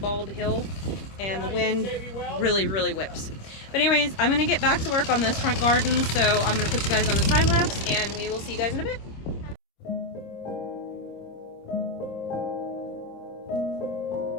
hill and the wind really, really whips. But anyways, I'm gonna get back to work on this front garden. So I'm gonna put you guys on the time lapse and we will see you guys in a bit.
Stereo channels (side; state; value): right; late; 26 ms